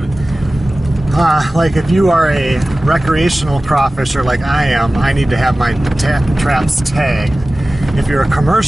like if you are a recreational crawfisher like I am, I need to have my traps tagged. If you're a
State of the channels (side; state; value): both; normal; correlation 0.97